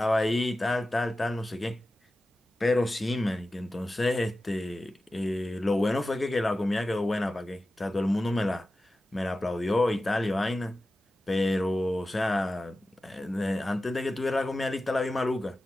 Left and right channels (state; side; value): normal; both; correlation 0.94